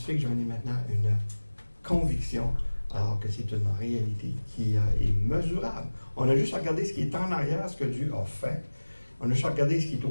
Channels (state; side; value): inverted; both; correlation -1.00